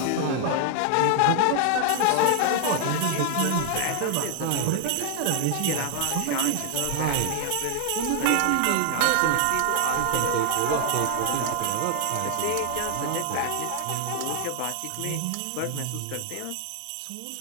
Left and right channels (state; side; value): different; both; correlation 0.00